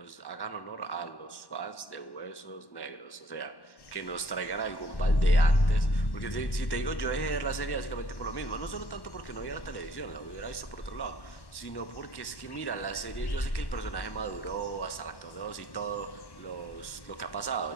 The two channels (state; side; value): late; right; 1.1 ms